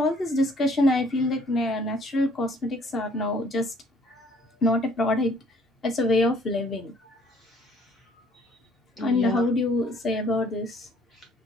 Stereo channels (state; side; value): normal; both; correlation 0.60